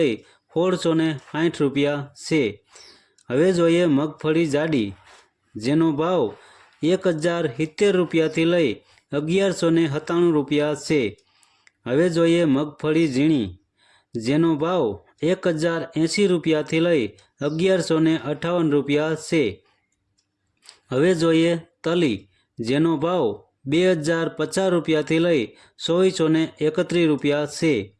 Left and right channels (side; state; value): both; identical; correlation 1.00